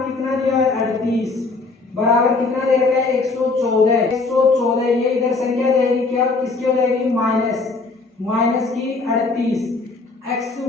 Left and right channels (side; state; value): right; quieter; 3.8 dB